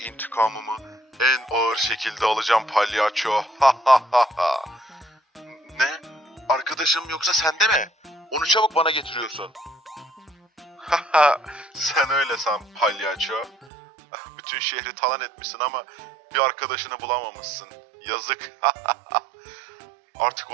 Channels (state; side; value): drops out; left; at 13.7 s